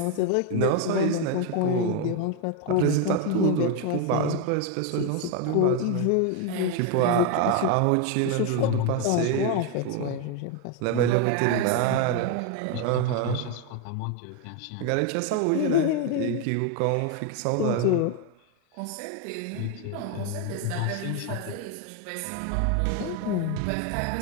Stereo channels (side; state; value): both; different; correlation 0.01